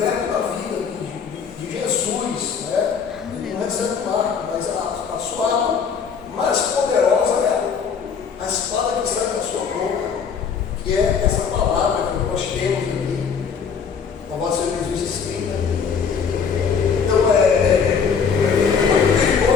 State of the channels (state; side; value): quieter; right; 6.3 dB